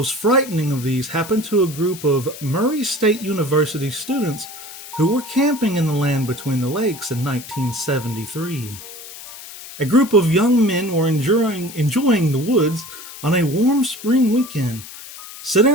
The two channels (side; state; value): left; noise; hiss, 14 dB below the sound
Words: frightening of these happened to a group of Murray State University students who were camping in the land between the lakes in 1973. A group of young men were enjoying the woods on a warm spring weekend, sitting